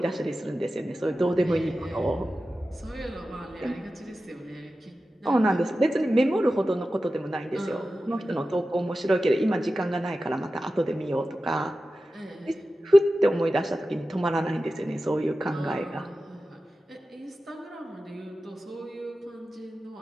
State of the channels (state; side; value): normal; both; correlation 0.94